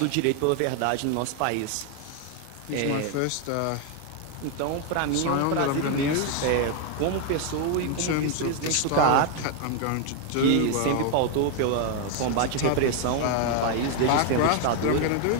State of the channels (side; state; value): both; different; correlation 0.00